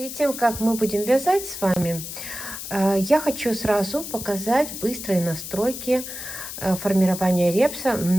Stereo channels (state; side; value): noise; left; hiss, 9 dB below the sound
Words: тем, как мы будем вязать с вами, я хочу сразу показать быстрые настройки формирования репса